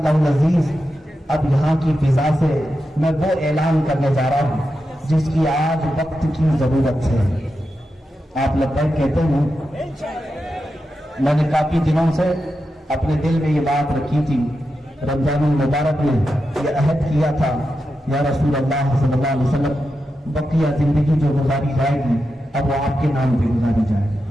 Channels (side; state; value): both; normal; correlation 0.89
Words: العزیز اب یہاں کی فضا سے میں وہ اعلان کرنے جا رہا ہوں جس کی آج وقت کی ضرورت ہے. آپ لبیک کہتے ہیں. میں نے کافی دنوں سے اپنے دل میں یہ بات رکھی تھی, رمضان المبارک میں یہ عہد کیا تھا, یا رسول اللہ صلی اللہ علیہ وسلم بقیہ زندگی جو گزاری جائے گی اب وہ آپ کے نام پہ گزاری جائے گی.